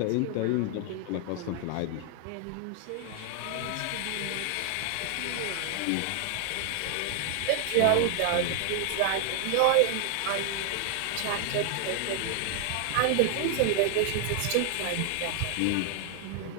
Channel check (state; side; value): different; both; correlation 0.00